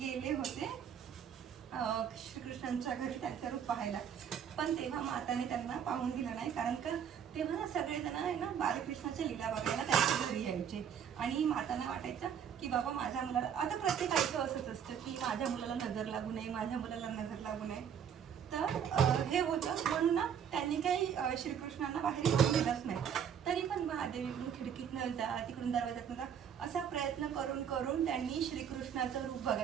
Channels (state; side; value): quieter; left; 8.2 dB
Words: होते श्रीकृष्णांच्या घरी त्यांचं रूप पाहायला. पण तेव्हा माताने त्यांना पाहून दिलं नाही, कारण का तेव्हा ना सगळेजण आहे ना बालकृष्णाच्या लीला बघायला त्यांच्या घरी यायचे. आणि मातांना वाटायचं की बाबा माझ्या मुलाला, आता प्रत्येकाचं असंच असतं की माझ्या मुलाला नजर लागू नये, माझ्या मुलाला नजर लागू नये. तर हे होतं म्हणून ना त्यांनी काही श्रीकृष्णांना बाहेर येऊन दिलंच नाही. तरी पण महादेव इकडून खिडकीतनं जा, तिकडून दरवाजातनं जा, असा प्रयत्न करून करून त्यांनी श्रीकृष्णाचं रूप